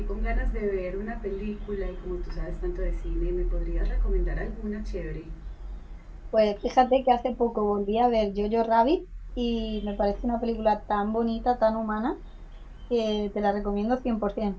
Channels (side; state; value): both; identical; correlation 1.00